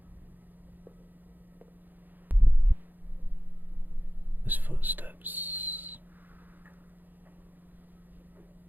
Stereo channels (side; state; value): left; late; 0.087 ms